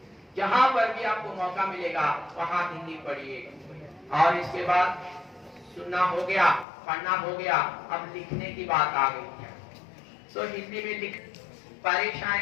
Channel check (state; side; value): drops out; right; at 6.7 s